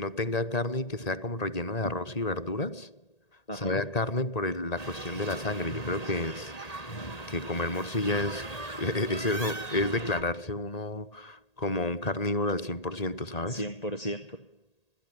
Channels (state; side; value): late; right; 1.8 ms